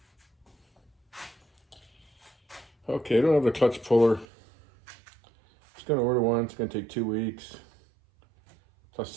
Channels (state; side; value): drops out; left; at 4.2 s